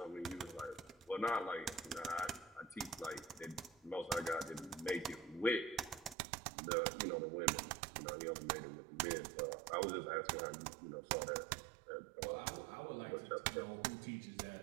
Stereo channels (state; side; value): drops out; left; at 6.2 s